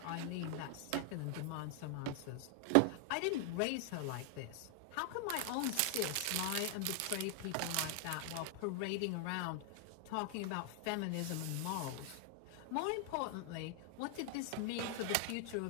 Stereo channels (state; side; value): different; both; correlation 0.00